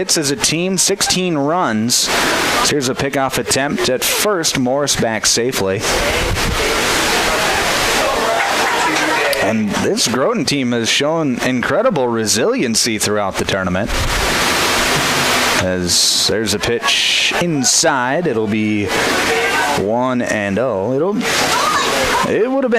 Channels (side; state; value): both; identical; correlation 1.00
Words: as a team, 16 runs. So here's a pickoff attempt at first. Morris back safely. And this Groton team has shown incredible resiliency throughout the tournament. As there's a pitch inside, it'll be 1-0. It would have